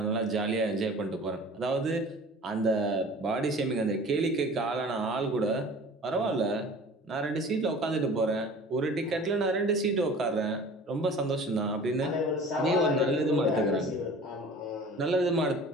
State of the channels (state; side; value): normal; both; correlation 0.43